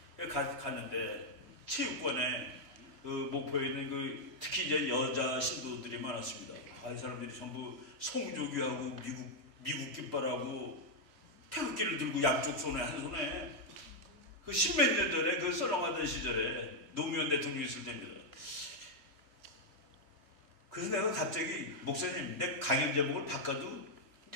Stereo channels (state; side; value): late; left; 3.1 ms